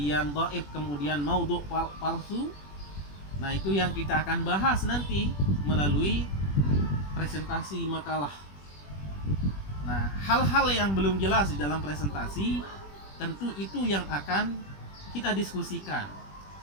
dhaif, kemudian maudhu, palsu? Nah, itu yang kita akan bahas nanti melalui presentasi makalah. Nah, hal-hal yang belum jelas di dalam presentasi tentu itu yang akan kita diskusikan,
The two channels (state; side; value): late; right; 21 ms